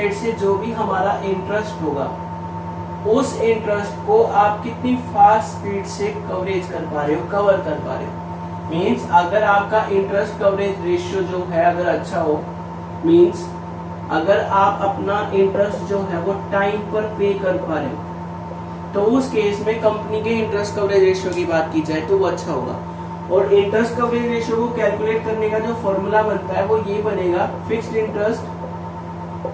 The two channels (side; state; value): both; identical; correlation 1.00